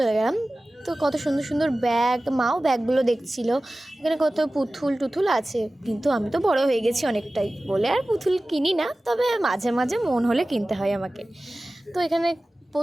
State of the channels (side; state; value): both; normal; correlation 0.97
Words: গেলাম। তো কত সুন্দর সুন্দর ব্যাগ, মাও ব্যাগগুলো দেখছিল। এখানে কত পুতুল টুতুল আছে, কিন্তু আমি তো বড় হয়ে গেছি অনেকটাই বলে আর পুতুল কিনি না, তবে মাঝে মাঝে মন হলে কিনতে হয় আমাকে। তো এখানে